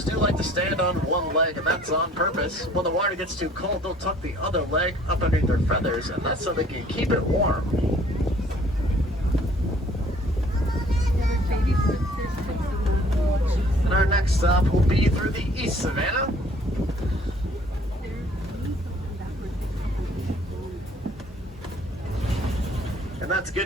do like to stand on one leg, and that's on purpose. When the water gets too cold, they'll tuck the other leg up underneath their feathers, and that's so they can keep it warm. And our next stop will be through the East Savannah. And that's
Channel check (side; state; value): both; normal; correlation 0.56